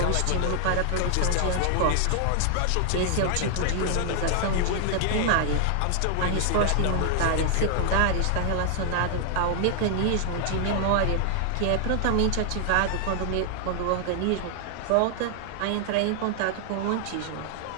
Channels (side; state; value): both; different; correlation 0.00